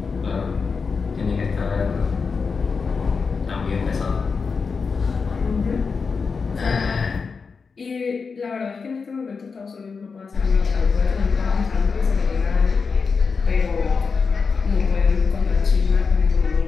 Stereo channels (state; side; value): quieter; right; 5.1 dB